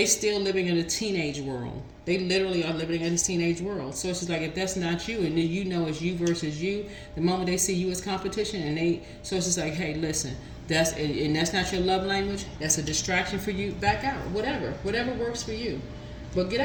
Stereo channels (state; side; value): identical; both; correlation 1.00